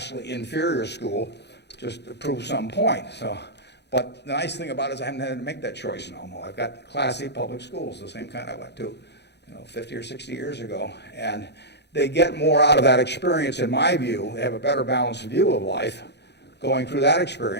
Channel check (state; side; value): late; right; 0.50 ms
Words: inferior school just to prove some point. But the nice thing about it is I haven't had to make that choice in Omaha. I've got classy public schools, the same kind I went to 50 or 60 years ago. And they get more out of that experience, in my view. They have a better balanced view of life going through that